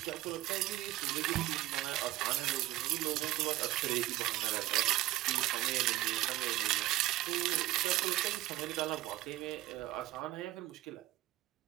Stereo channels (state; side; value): quieter; left; 16.6 dB